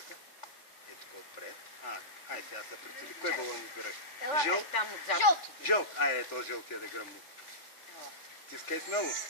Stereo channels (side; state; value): right; late; 3.4 ms